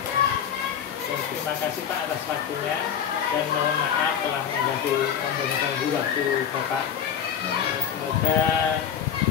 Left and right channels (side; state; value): right; quieter; 8.5 dB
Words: Terima kasih Pak atas waktunya dan mohon maaf telah mengganggu waktu Bapak. Semoga